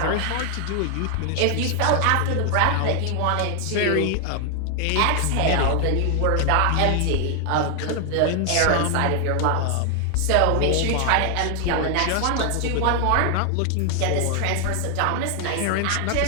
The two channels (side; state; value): both; different; correlation 0.00